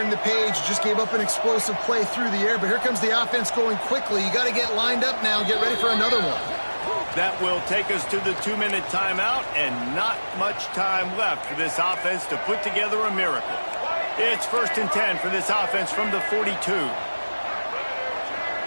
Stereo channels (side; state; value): both; inverted; correlation -1.00